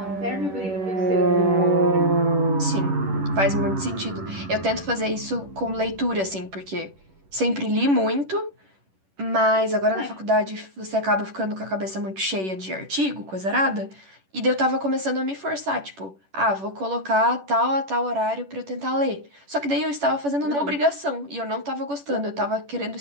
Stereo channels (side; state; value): left; late; 10 ms